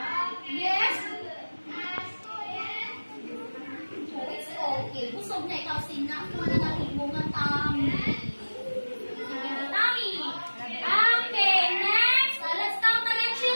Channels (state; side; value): inverted; both; correlation -1.00